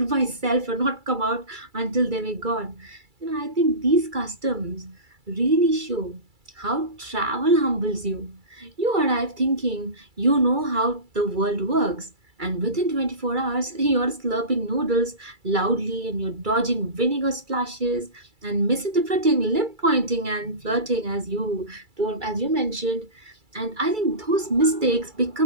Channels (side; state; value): left; late; 2.3 ms